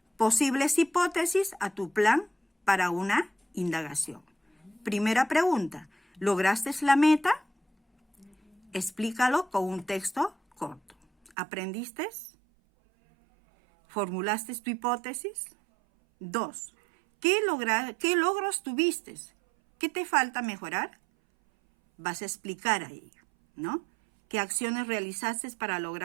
posibles hipótesis a tu plan para una indagación. Primera pregunta. ¿Lograste la meta? Explícalo con un texto corto. ¿Aprendiste? ¿Formulaste tu hipótesis? 2. ¿Qué logros tuviste? ¿Qué te falta mejorar? Vas a explicar ahí, ¿no? ¿Qué acciones realizaste para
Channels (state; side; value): drops out; left; at 11.4 s